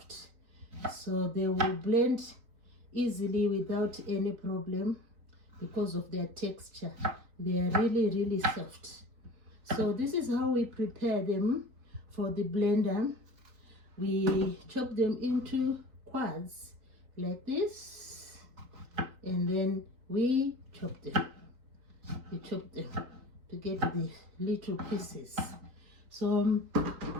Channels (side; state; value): left; late; 3.9 ms